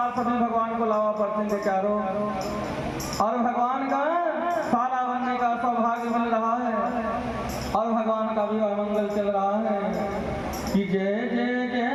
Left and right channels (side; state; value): both; identical; correlation 1.00